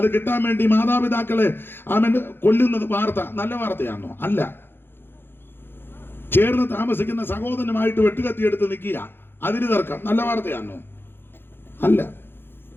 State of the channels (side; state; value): right; late; 0.10 ms